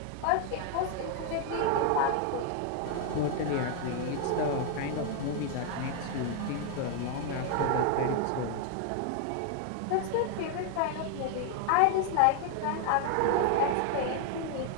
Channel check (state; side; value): different; both; correlation 0.00